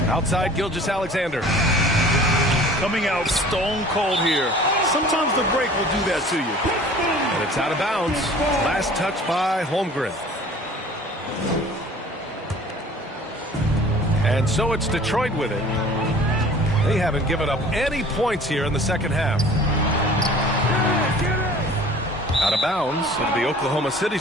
Outside Gilgeous-Alexander. Coming out stone cold here. Sometimes the break will do that to you. And it's out of bounds. Last touch by Holmgren. And so it's Detroit with it. They haven't given up any points here in the second half. Out of bounds. It'll be Oklahoma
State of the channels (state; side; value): normal; both; correlation 0.47